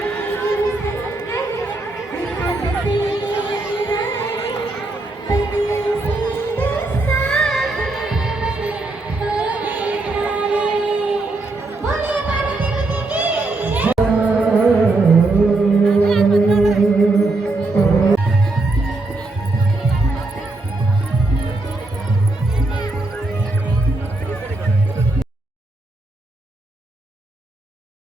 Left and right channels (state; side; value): quieter; left; 3.0 dB